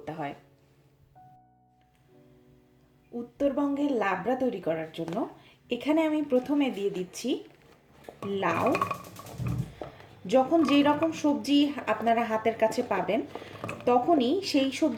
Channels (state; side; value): identical; both; correlation 1.00